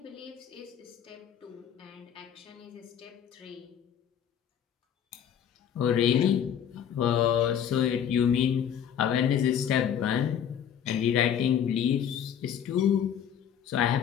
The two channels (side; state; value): right; quieter; 9.0 dB